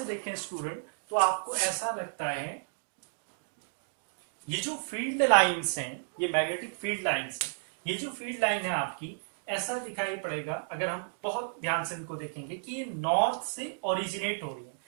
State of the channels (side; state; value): left; silent; digital silence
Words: देखें स्टूडेंट, तो आपको ऐसा लगता है ये जो फील्ड लाइंस हैं, ये मैग्नेटिक फील्ड लाइंस हैं, ये जो फील्ड लाइन है आपकी, ऐसा दिखाई पड़ेगा अगर हम बहुत ध्यान से इनको देखेंगे कि ये नॉर्थ से ओरिजिनेट हो रही है।